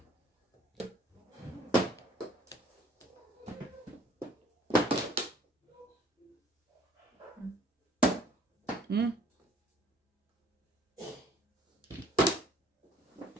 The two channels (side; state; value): both; normal; correlation 0.57